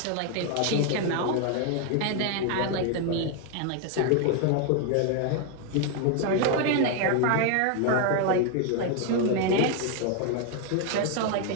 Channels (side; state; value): both; different; correlation 0.01